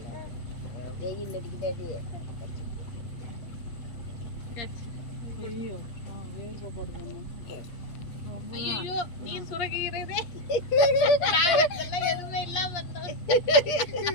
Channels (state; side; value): late; right; 8.5 ms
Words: வெயில் அடிக்குதாடி ஐயோ நீ சுரக்கிறதே எதுவுமே இல்லாம